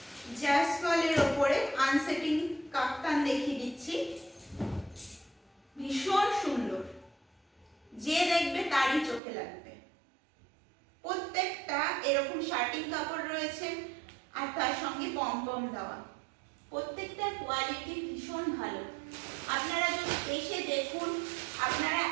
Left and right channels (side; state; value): left; drops out; at 9.2 s